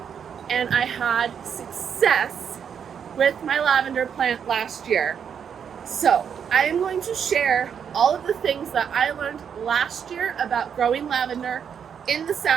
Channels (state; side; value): quieter; left; 7.6 dB